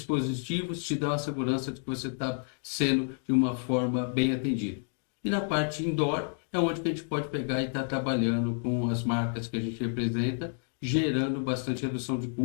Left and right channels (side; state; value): right; silent; 58 dB below the other